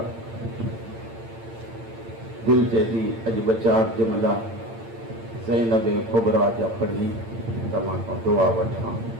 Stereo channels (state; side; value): late; left; 8.8 ms